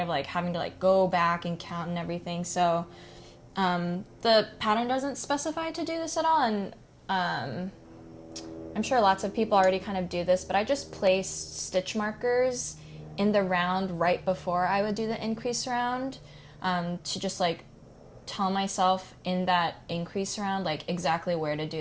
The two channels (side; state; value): both; identical; correlation 1.00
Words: like having to like go back and count and everything. So the pattern doesn't specify to do this at all, and I'm sure lots of people already kind of do this, but I just placed stitch markers in the round right before I would do the increase round to just like tell myself in that increase round like exactly where to